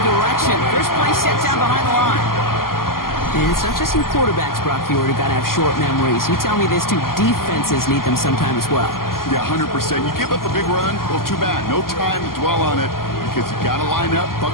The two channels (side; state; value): right; late; 0.92 ms